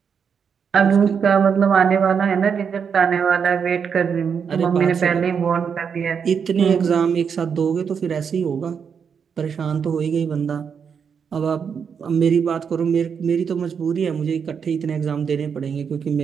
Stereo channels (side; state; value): left; quieter; 6.7 dB